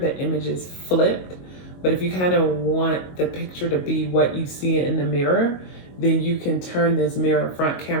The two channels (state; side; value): late; right; 22 ms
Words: image is flipped. But if you kind of want the picture to be what you see in the mirror, then you can turn this mirror front